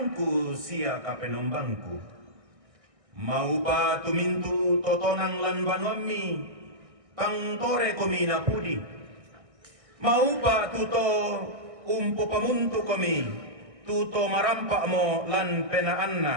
sia kapenombangku mau pa tu mintu totonang lan banwami pangtore komina pudi mau pa tuto umpo pamuntu kami tuto marampak mo lan penaanna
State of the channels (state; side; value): late; left; 1.6 ms